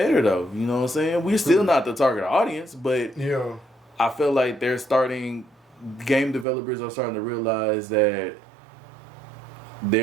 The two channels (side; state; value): left; drops out; at 6.5 s